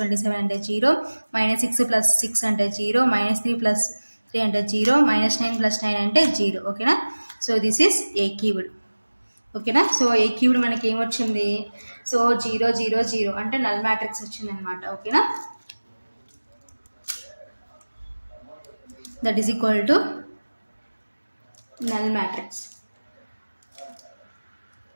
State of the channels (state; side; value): inverted; both; correlation -1.00